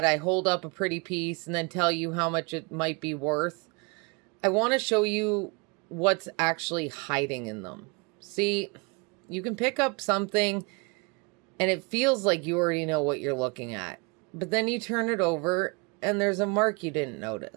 I hold up a pretty piece and then tell you how much it might be worth. I want to show you what's actually hiding in them. See, you can pick up something and it feels like you already know what you're looking at. But then you turn it over and there's a mark you didn't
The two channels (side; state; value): left; quieter; 29.6 dB